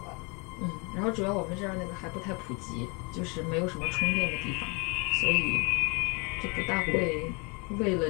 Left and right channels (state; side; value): quieter; right; 31.5 dB